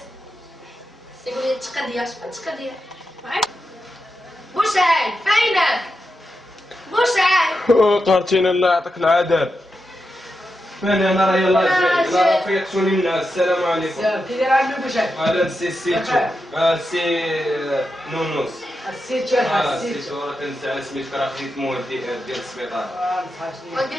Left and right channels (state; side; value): normal; both; correlation 0.88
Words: يقول لي تقضيه شحال تقضيه بوسعيد فينك بوسعيد قهرتينا الله يعطيك العذاب. فين انا راه يلاه جاي راه فيقتوني الناس. السلام عليكم. كي داير عندك بوشاك؟ هذا السيتو سي نونوس. السيتو الحاج السيتو. السيتو راه كنزعل سميتك راه خديت مواد ديال السبيطار.